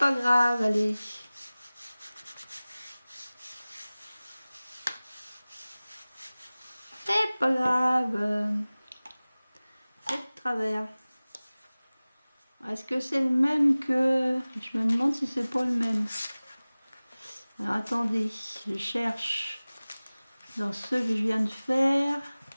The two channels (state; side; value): inverted; both; correlation -0.99